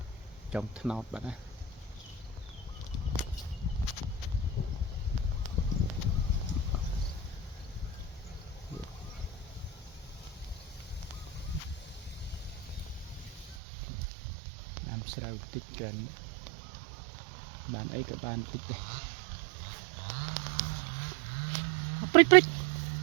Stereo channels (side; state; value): left; drops out; at 13.6 s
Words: trong nọt bạn á làm sao tích gần bạn ấy cả bạn tích đây prích prích